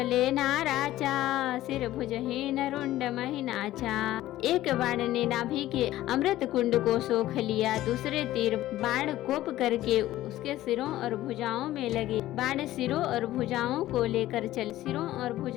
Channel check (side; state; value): right; quieter; 14.9 dB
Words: नाराचा, सिर भुजहीन रुंड महिनाचा। एक बाण ने नाभि के अमृत कुंड को सोख लिया, दूसरे तीर बाण कोप करके उसके सिरों और भुजाओं में लगे। बाण सिरों और भुजाओं को लेकर चल, सिरों और